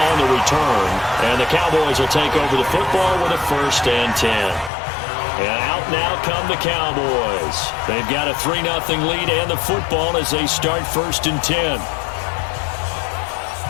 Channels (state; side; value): drops out; right; at 4.7 s